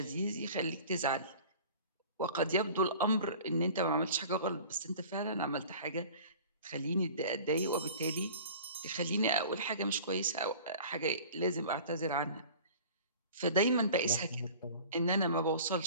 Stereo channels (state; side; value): inverted; both; correlation -0.43